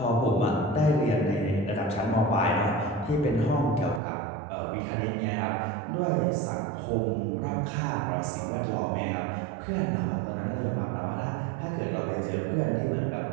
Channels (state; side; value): drops out; left; at 4.0 s